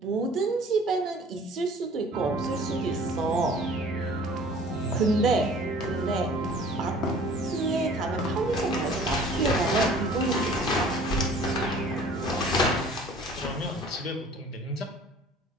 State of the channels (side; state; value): both; normal; correlation 0.50